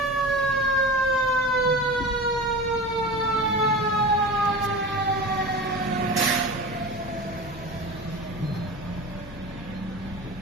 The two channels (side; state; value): both; normal; correlation 0.31